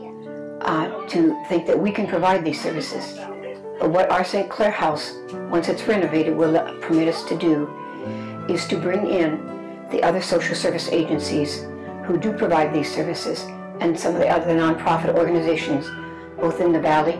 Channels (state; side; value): identical; both; correlation 1.00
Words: to think that we can provide these services, but what our St. Clair House, once it's renovated, will permit us to do is to bring in the other social service agencies who do provide these services and some of the other nonprofit organizations, both in the Valley